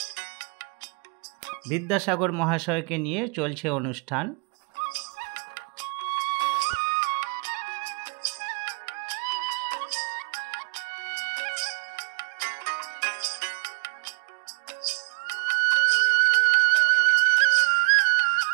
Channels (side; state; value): left; quieter; 35.3 dB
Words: বিদ্যাসাগর মহাশয়কে নিয়ে চলছে অনুষ্ঠান।